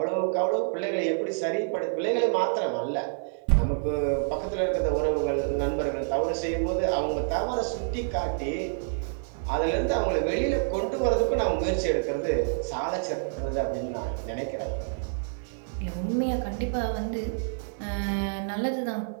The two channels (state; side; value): silent; left; digital silence